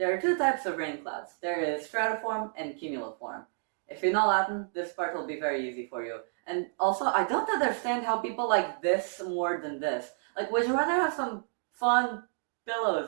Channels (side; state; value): left; silent; 58 dB below the other